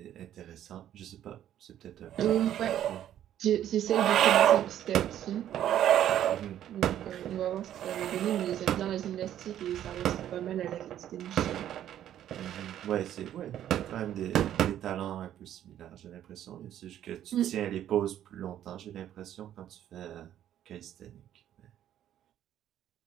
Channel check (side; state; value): left; quieter; 11.2 dB